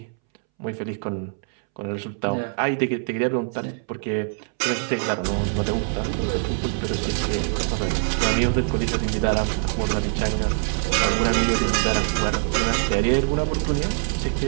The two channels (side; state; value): left; silent; 63 dB below the other